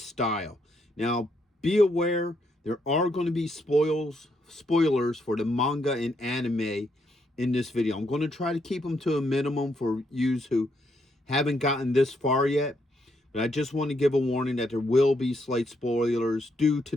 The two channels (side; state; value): both; normal; correlation 0.76